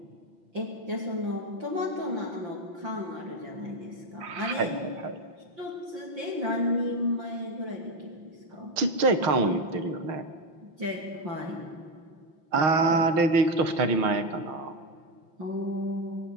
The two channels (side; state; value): left; late; 5.8 ms